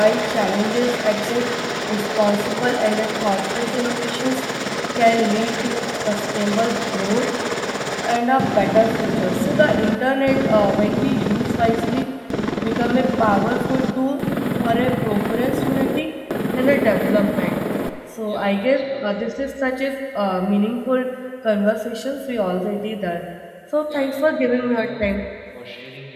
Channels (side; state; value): both; identical; correlation 1.00